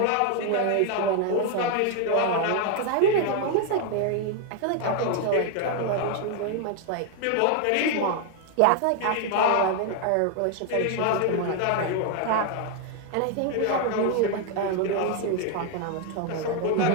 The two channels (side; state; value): both; different; correlation 0.01